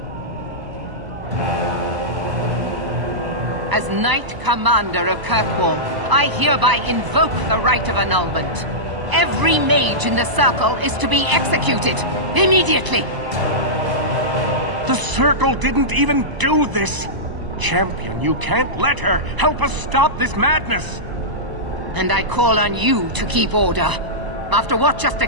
As Knight Commander of Kirkwall, I hereby invoke the Rite of Annulment. Every mage in the Circle is to be executed, immediately! The Circle didn't even do this! Champion, you can't let her! Help us stop this madness! And I call on you to keep order. After what just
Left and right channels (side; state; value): left; late; 1.0 ms